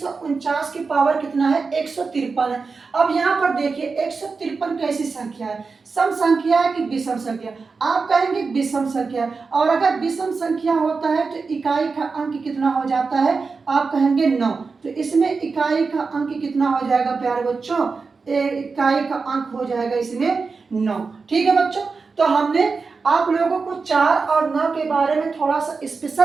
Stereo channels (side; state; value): left; quieter; 4.6 dB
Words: की पावर कितना है, 153 है। अब यहाँ पर देखिए 153 कैसी संख्या है, सम संख्या है कि विषम संख्या, आप कहेंगे विषम संख्या। और अगर विषम संख्या होता है तो इकाई का अंक कितना हो जाता है, आप कहेंगे 9। तो इसमें इकाई का अंक कितना हो जाएगा प्यारे बच्चों, इकाई का अंक हो जाएगा इसमें 9। ठीक है बच्चों, तो हमने आप लोगों को 4 और 9 के बारे में थोड़ा सा